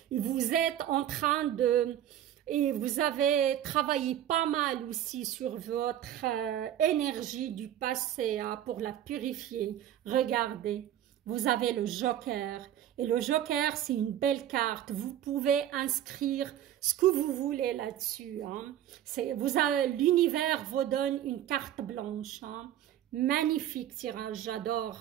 Et vous êtes en train de... Et vous avez travaillé pas mal aussi sur votre énergie du passé hein, pour la purifier. Regardez, vous avez le joker. Et le joker, c'est une belle carte. Vous pouvez inscrire ce que vous voulez là-dessus. Hein. L'univers vous donne une carte blanche. Hein. Magnifique tirage,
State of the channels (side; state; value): left; quieter; 11.4 dB